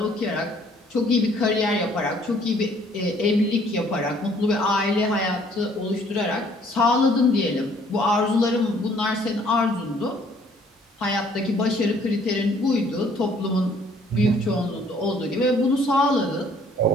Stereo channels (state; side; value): normal; both; correlation 0.60